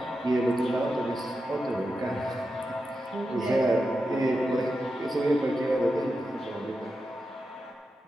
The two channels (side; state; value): both; normal; correlation 0.89